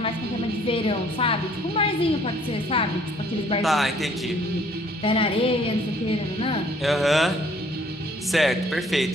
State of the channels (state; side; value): normal; both; correlation 0.60